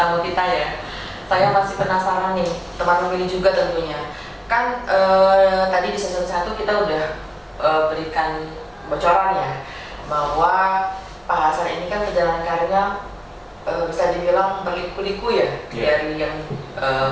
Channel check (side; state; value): both; identical; correlation 1.00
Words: kita ya? Saya masih penasaran nih, teman pemilih juga tentunya. Kan tadi di session 1 kita udah berikan bocoran ya, bahwa Pak Hasan ini kan perjalanan karirnya bisa dibilang berliku-liku ya, dari yang